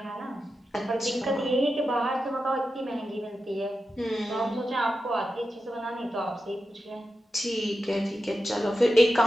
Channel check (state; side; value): normal; both; correlation 0.90